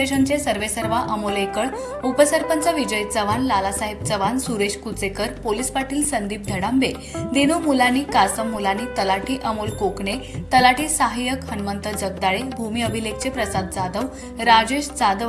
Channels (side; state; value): both; identical; correlation 1.00